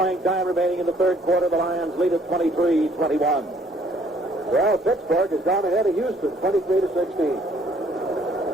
time remaining in the third quarter. The Lions lead at 23-21. Well, Pittsburgh has gone ahead of Houston, 23-16.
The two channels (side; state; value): both; normal; correlation 0.62